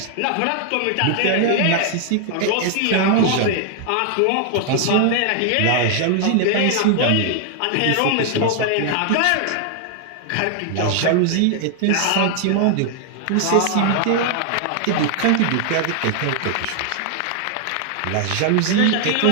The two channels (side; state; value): both; different; correlation 0.00